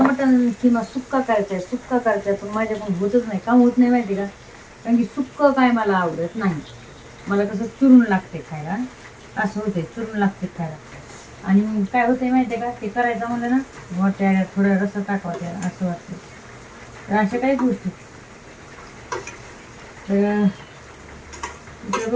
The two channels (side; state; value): both; identical; correlation 1.00